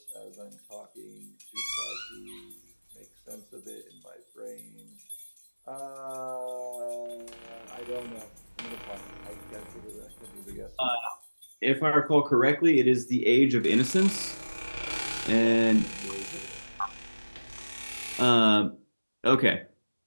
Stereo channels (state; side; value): inverted; both; correlation -1.00